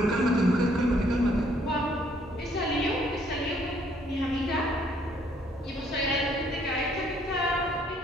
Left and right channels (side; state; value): both; normal; correlation 0.65